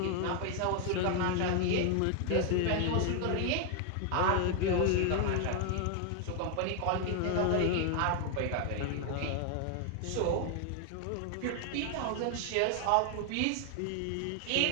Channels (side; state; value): both; different; correlation 0.00